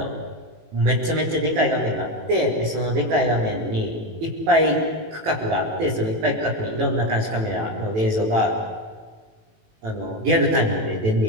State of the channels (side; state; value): left; late; 19 ms